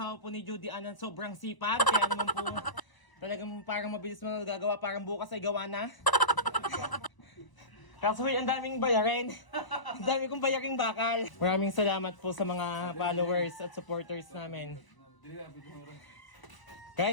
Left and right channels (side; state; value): right; late; 1.0 ms